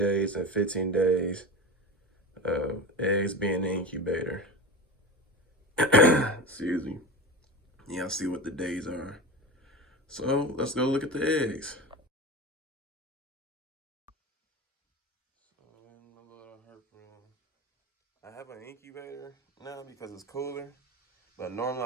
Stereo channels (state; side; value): normal; both; correlation 0.26